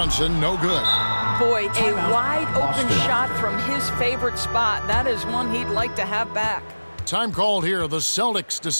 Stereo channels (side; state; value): both; inverted; correlation -1.00